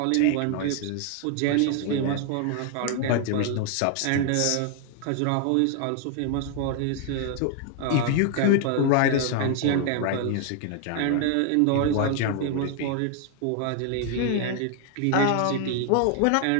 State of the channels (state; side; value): different; both; correlation 0.00